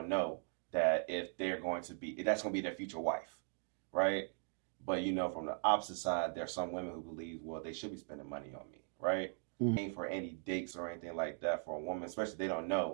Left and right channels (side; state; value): left; silent; 51 dB below the other